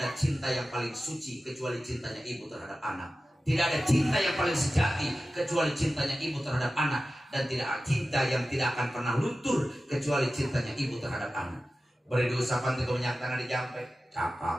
ada cinta yang paling suci kecuali cintanya ibu terhadap anak. Tidak ada cinta yang paling sejati kecuali cintanya ibu terhadap anak. Dan tidak ada cinta yang tidak akan pernah luntur kecuali cintanya ibu terhadap anak. Beri diusapan itu minyak tanah dijampe.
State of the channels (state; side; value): normal; both; correlation 0.94